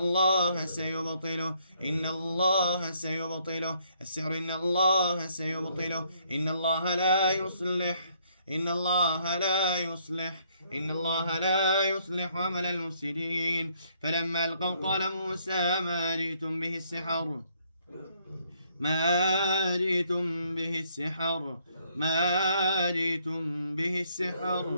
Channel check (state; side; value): inverted; both; correlation -0.69